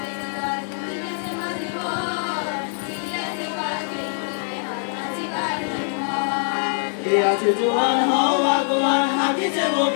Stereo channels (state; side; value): silent; right; digital silence